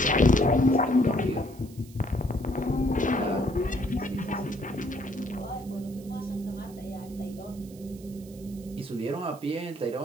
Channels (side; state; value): right; noise; hiss, 23 dB below the sound